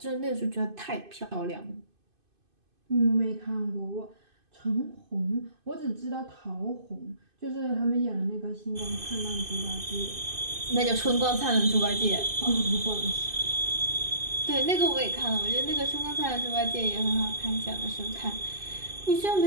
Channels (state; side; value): late; left; 2.5 ms